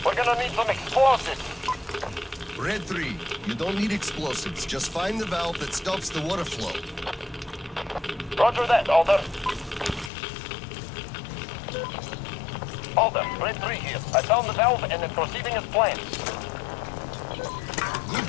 gonna need some explosives. Red 3, you don't need explosives. Just find the valve that stops the water flow. Roger that, Alder. Alder, Red 3 here. I found the valve and it's proceeding as planned. Good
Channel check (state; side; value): drops out; right; at 10.1 s